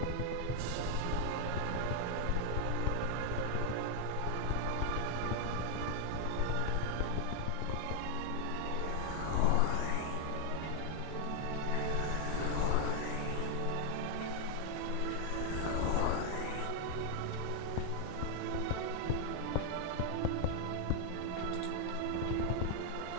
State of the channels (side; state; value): both; different; correlation 0.00